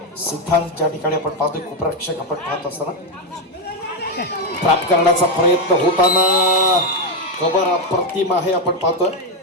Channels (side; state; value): both; normal; correlation 0.06